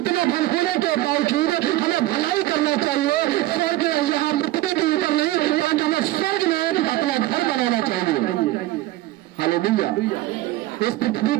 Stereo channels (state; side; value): quieter; left; 16.6 dB